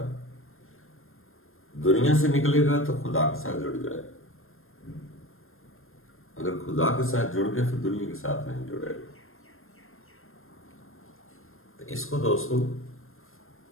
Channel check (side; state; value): right; late; 0.61 ms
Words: دنیا سے نکلے گا تو خدا کے ساتھ جڑ جائے گا، اگر خدا کے ساتھ جڑ گئے پھر دنیا کے ساتھ نہیں جڑے گا. تو اس کو دوستو